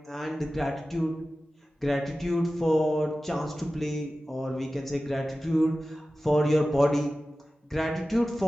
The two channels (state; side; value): normal; both; correlation 0.95